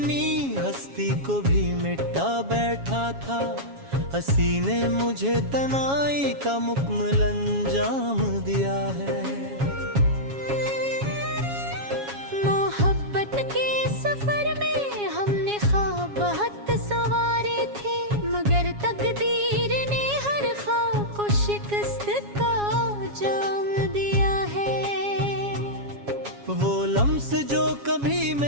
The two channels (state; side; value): late; left; 7.3 ms